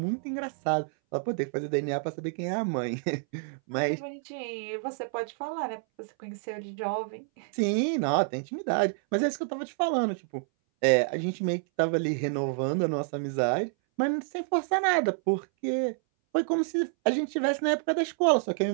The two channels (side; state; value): left; silent; 59 dB below the other